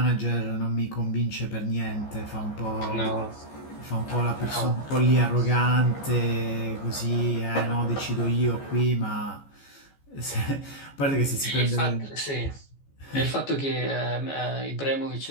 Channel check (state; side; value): late; right; 14 ms